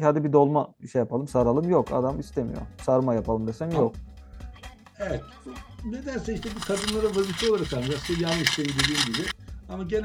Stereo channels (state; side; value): identical; both; correlation 1.00